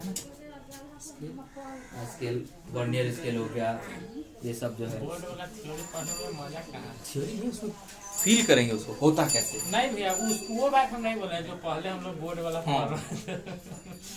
स्केल, वर्नियर स्केल हो गया, ये सब जो है बोर्ड वाला थ्योरी पढ़ने में मजा कहाँ। थ्योरी नहीं, उसको फील करेंगे उसको होता कैसे। नहीं भैया वो बात हम नहीं बोल रहे जो पहले हम लोग बोर्ड वाला हाँ। पढ़ रहे थे।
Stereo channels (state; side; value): identical; both; correlation 1.00